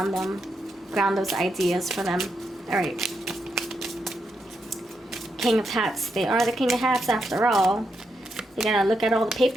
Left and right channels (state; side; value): normal; both; correlation 0.82